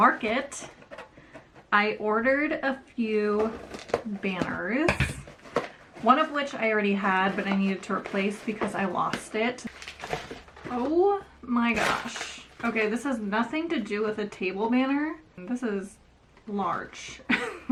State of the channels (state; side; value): identical; both; correlation 1.00